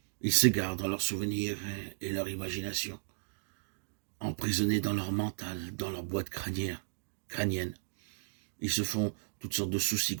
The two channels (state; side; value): silent; left; digital silence